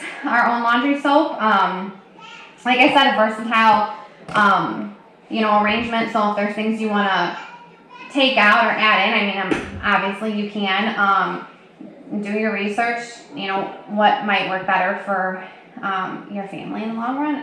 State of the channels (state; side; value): identical; both; correlation 1.00